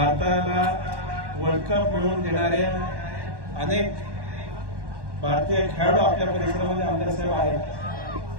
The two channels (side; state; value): left; late; 1.1 ms